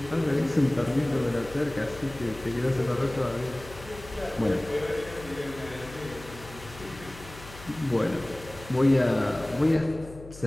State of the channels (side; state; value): left; noise; hum, 17 dB below the sound